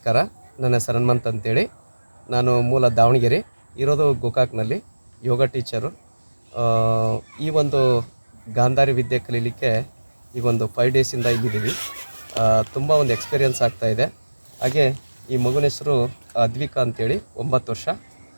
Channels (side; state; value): both; inverted; correlation -1.00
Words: ನನ್ನ ಹೆಸರು ಹನುಮಂತ್ ಅಂತೇಳಿ. ನಾನು ಮೂಲ ದಾವಣಗೆರೆ, ಇರೋದು ಗೋಕಾಕ್ನಲ್ಲಿ, ಯೋಗ ಟೀಚರು. ಈ ಒಂದು ಗಾಂಧಾರಿ ವಿದ್ಯೆ ಕಲೀಲಿಕ್ಕೆ ಈಗ ಒಂದು 5 ಡೇಸಿಂದ ಇಲ್ಲಿದ್ದೀವಿ. ತುಂಬ ಒಂದು ಎಕ್ಸ್ಪೀರಿಯನ್ಸ್ ಆಗ್ತಾಯಿದೆ. ಹಾಗೆ ಈ ಮಗುನ ಹೆಸರು ಅದ್ವಿಕಾ ಅಂತೇಳಿ, 9 ವರ್ಷ.